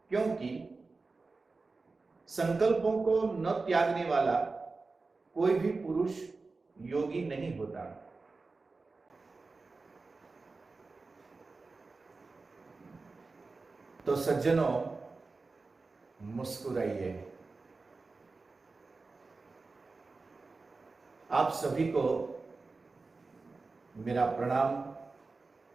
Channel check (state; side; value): quieter; left; 3.9 dB